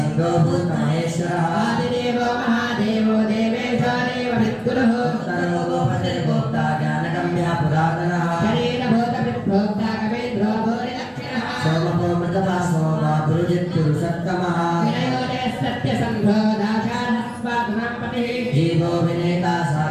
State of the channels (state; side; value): identical; both; correlation 1.00